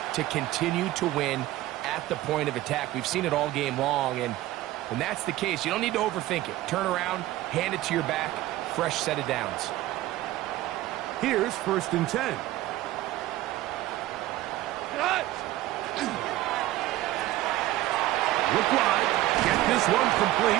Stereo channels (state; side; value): quieter; left; 15.8 dB